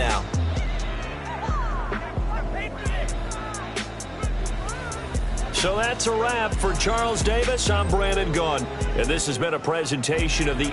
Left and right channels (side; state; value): both; identical; correlation 1.00